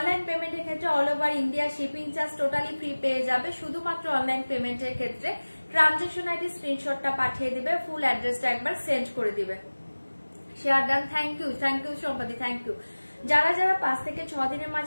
পেমেন্টের ক্ষেত্রে all over India shipping charge totally free পেয়ে যাবে, শুধুমাত্র অনলাইন পেমেন্টের ক্ষেত্রে ট্রানজাকশন আইডি স্ক্রিনশটটা পাঠিয়ে দিবে, ফুল অ্যাড্রেসটা একবার সেন্ড করে দিবে। শেয়ার ডান, থ্যাংক ইউ সম্পাদি, থ্যাংক ইউ। যারা যারা 5 থেকে 6 দিনের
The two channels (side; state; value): both; inverted; correlation -1.00